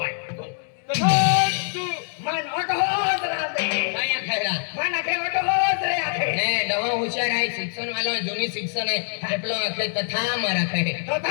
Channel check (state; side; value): silent; right; 62 dB below the other